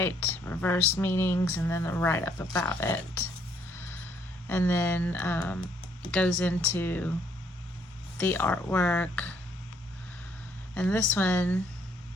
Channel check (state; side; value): normal; both; correlation 0.67